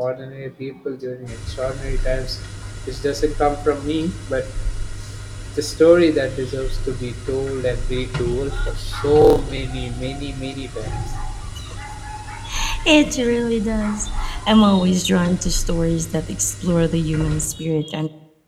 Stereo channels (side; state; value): both; identical; correlation 1.00